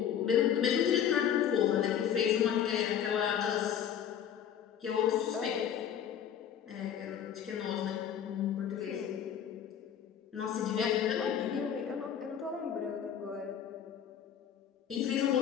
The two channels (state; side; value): quieter; right; 9.1 dB